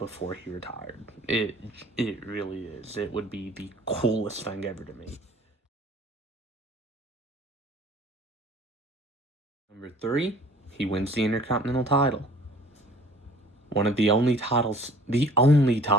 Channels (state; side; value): normal; both; correlation 0.51